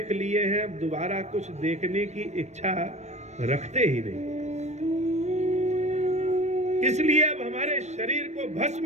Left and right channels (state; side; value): late; left; 0.33 ms